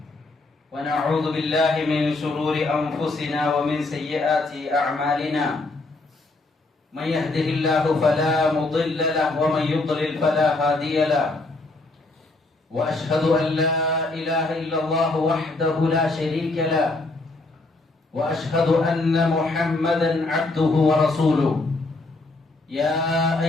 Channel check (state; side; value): quieter; right; 3.1 dB